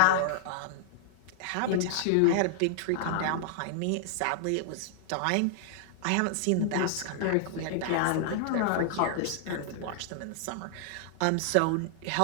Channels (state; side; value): different; both; correlation -0.01